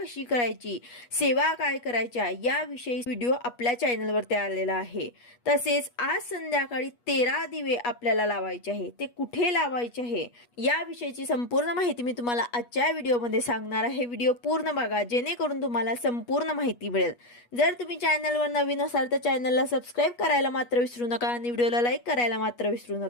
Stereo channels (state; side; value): late; right; 8.3 ms